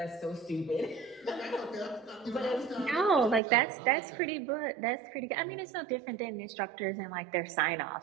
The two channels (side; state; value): left; drops out; at 3.4 s